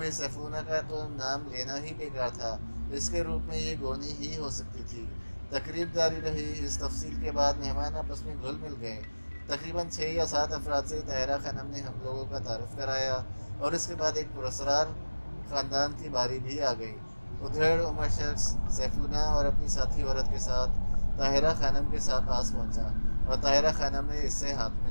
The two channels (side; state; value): both; inverted; correlation -1.00